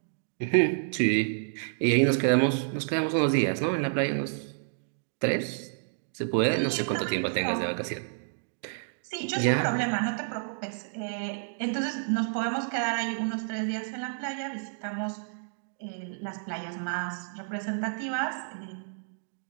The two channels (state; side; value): silent; left; digital silence